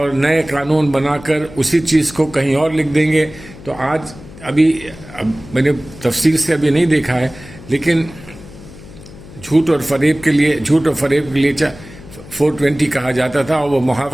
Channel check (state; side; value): noise; left; hum, 18 dB below the sound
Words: नए कानून बनाकर उसी चीज़ को कहीं और लिख देंगे। तो अब मैंने तफसील से अभी नहीं देखा है, लेकिन झूठ और फरेब के लिए 420 कहा जाता था, और वो